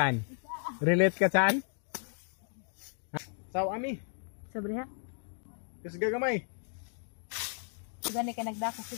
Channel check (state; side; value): silent; right; 55 dB below the other